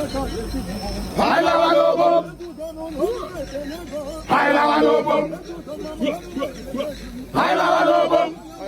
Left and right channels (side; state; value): both; identical; correlation 1.00